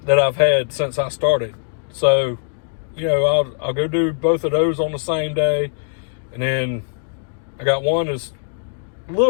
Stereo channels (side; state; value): right; silent; digital silence